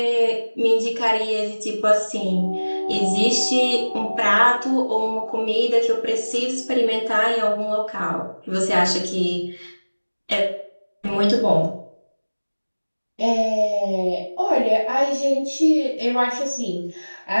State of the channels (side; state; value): both; inverted; correlation -1.00